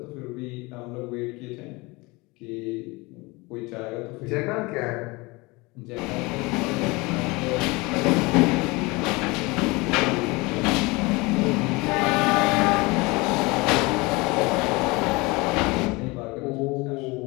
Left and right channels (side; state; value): right; quieter; 24.6 dB